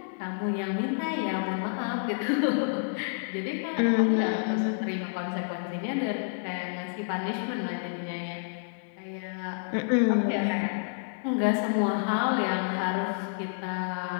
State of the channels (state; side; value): silent; right; digital silence